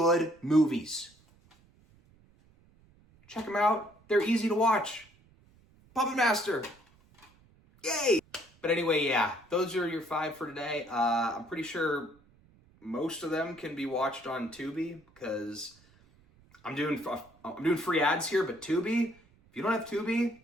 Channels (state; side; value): noise; right; rumble, 30 dB below the sound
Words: movies. Check them out. They're easy to watch. Puppet Master. Yay! But anyway, yeah, those are your 5 for today. I'm pretty sure most of them can be watched on Tubi, because I'm doing free ads here, but Tubi, if you don't have Tubi